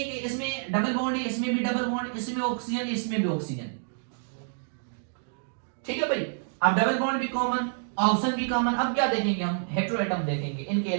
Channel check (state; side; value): silent; left; digital silence